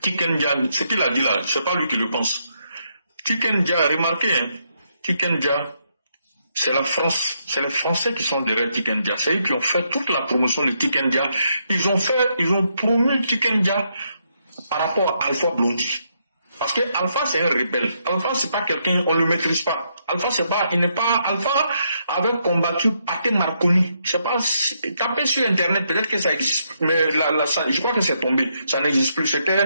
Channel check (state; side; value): inverted; both; correlation -0.77